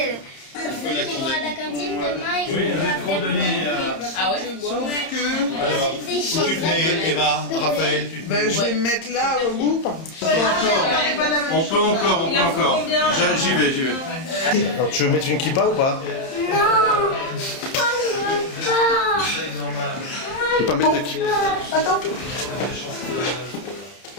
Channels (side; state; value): right; late; 31 ms